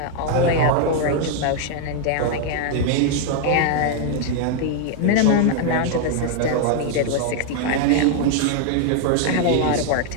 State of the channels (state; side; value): different; both; correlation 0.00